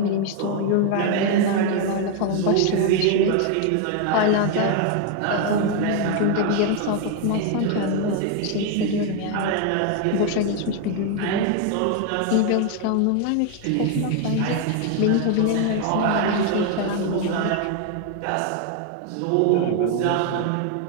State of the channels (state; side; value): different; both; correlation 0.01